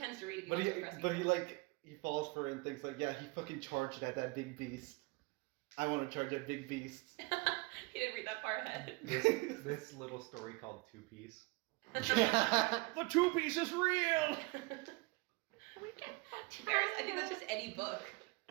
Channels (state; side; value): quieter; left; 26.4 dB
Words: to read it. but he like he falls for it and thinks like, yeah, he fucking charged at that big beast. I want to charge at big beasts. He didn't read that part ahead. This little story called Two Piece. The two piece is real. Varys, I think that's just any book.